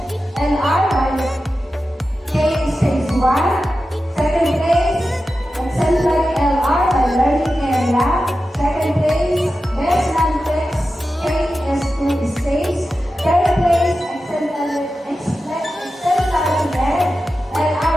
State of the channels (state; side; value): normal; both; correlation 0.92